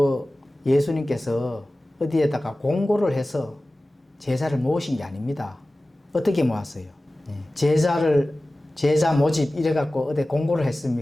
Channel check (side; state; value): both; normal; correlation 0.97